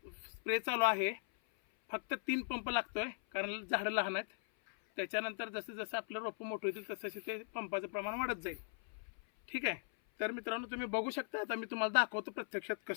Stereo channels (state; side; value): silent; right; 52 dB below the other